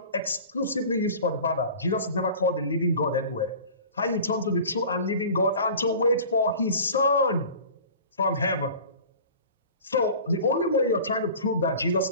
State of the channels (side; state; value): both; inverted; correlation -0.41